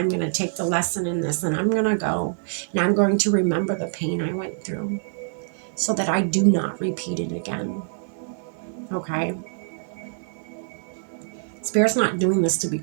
going to take the lesson in this and I'm going to go. And I'm going to remember the pain I went through so that I do not repeat it again. Okay? Spirit's not doing this to be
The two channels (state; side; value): silent; left; digital silence